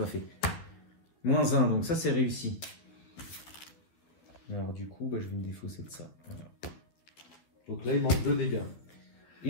fait. Moins 1, donc ça c'est réussi. Alors du coup, bah, je vais me défausser de ça. Voilà. Donc là, il manque 2 dégâts.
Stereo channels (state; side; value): late; right; 12 ms